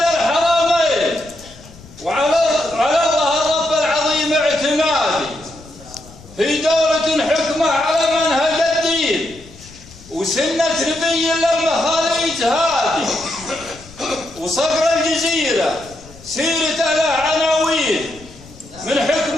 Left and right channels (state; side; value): noise; left; rumble, 21 dB below the sound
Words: الحرمين وعلى الله الرب العظيم اعتمادي في دولة حكمة على منهج الدين وسنة نبي للمخاليج هادي وصقر الجزيرة سيرته له عناوين من